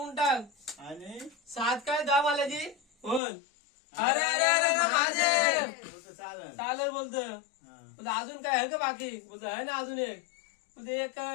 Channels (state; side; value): drops out; right; at 3.2 s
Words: टाक. आणि 7 काय 10 माल्याची बोल. अरे अरे अरे अरे महादेव. तुझं चालेल. चालेल बोलतं. हा. बोलतं अजून काय आहे का बाकी? बोलतं आहे ना अजून एक. म्हणजे एक